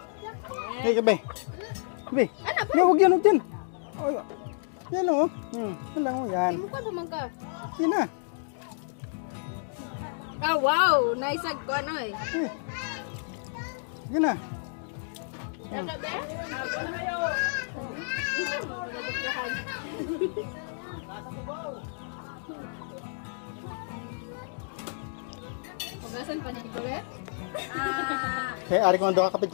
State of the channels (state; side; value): silent; right; digital silence